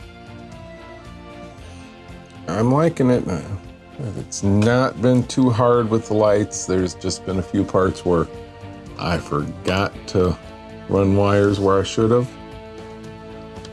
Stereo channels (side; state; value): both; identical; correlation 1.00